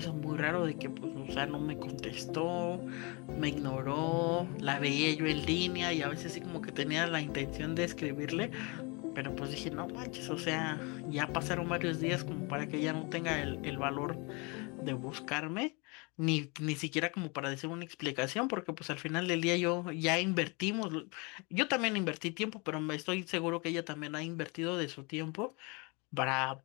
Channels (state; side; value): quieter; right; 29.8 dB